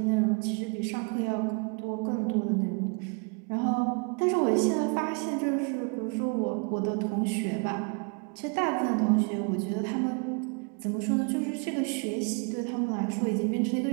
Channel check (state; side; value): quieter; left; 35.3 dB